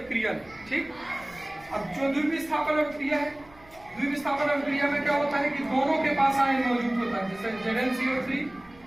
नहीं। ठीक। अब जो द्विविस्थापन अभिक्रिया है, द्विविस्थापन अभिक्रिया में क्या होता है कि दोनों के पास आयन मौजूद होता है। जैसे ZnCO3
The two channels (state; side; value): noise; right; rumble, 26 dB below the sound